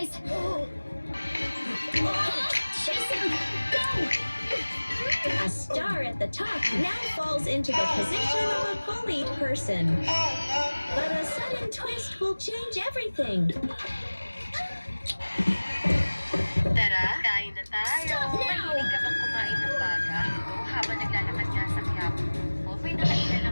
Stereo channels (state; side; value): inverted; both; correlation -1.00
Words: Jason, go! A star at the top now falls into the position of a bullied person. But a sudden twist will change everything. Tara, kain na tayo. Stop now! Mahilig ka bang kumain ng baga? Ito, habang naglalakad nga sa Quiapo ko, may nakailan